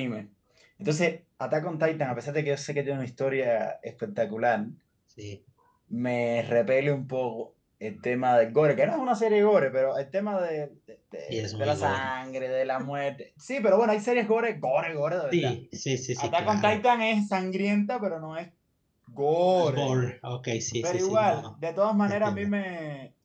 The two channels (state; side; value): identical; both; correlation 1.00